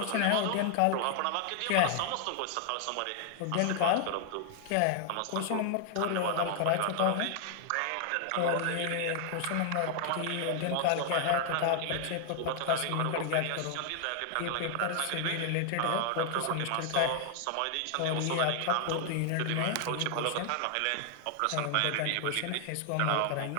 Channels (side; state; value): both; different; correlation 0.00